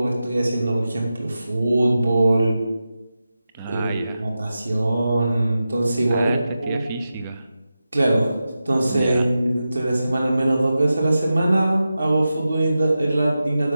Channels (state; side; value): inverted; both; correlation -0.92